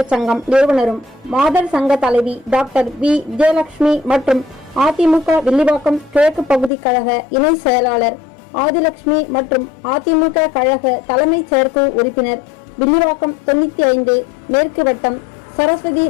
சங்கம் நிறுவனரும் மாதர் சங்க தலைவி டாக்டர் V. விஜயலட்சுமி மற்றும் அதிமுக வில்லிவாக்கம் கிழக்கு பகுதி கழக இணை செயலாளர் ஆதிலட்சுமி மற்றும் அதிமுக கழக தலைமை செயற்குழு உறுப்பினர் வில்லிவாக்கம் 95 மேற்கு வட்டம் சரஸ்வதி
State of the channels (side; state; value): right; drops out; at 6.7 s